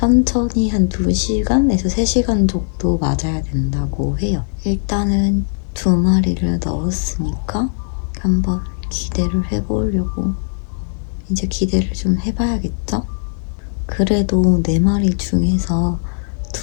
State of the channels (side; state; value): right; silent; digital silence